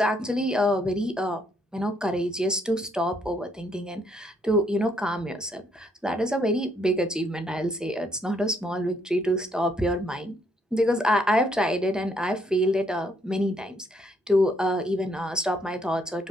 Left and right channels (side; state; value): both; normal; correlation 0.70